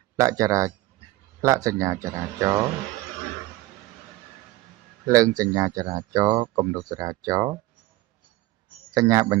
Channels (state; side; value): quieter; left; 17.8 dB